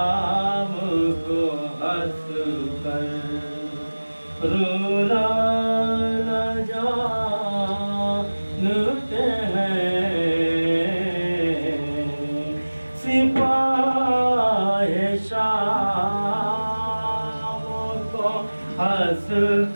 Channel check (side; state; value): both; inverted; correlation -1.00